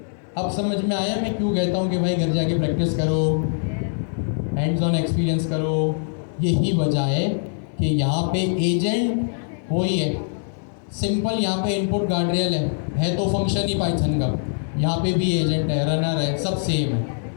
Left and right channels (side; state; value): right; silent; 62 dB below the other